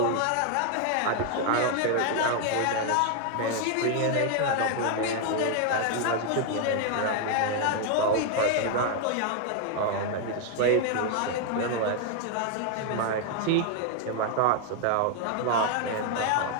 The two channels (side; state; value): both; different; correlation 0.00